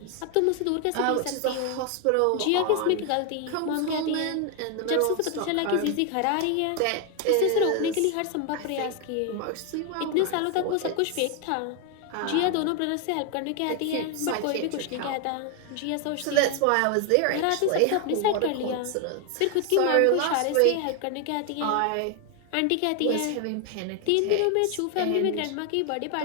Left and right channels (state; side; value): different; both; correlation 0.01